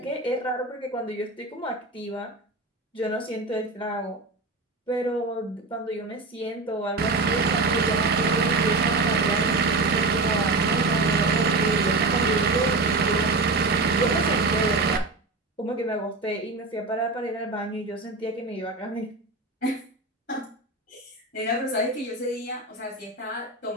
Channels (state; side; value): quieter; left; 3.3 dB